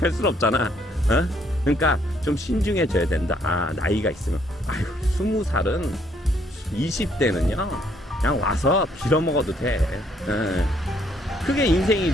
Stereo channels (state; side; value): normal; both; correlation 0.68